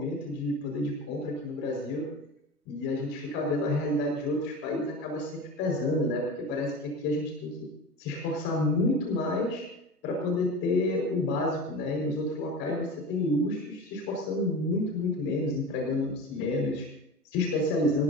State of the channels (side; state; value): both; normal; correlation 0.31